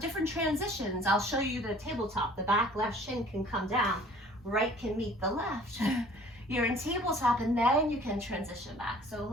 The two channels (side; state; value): both; normal; correlation 0.52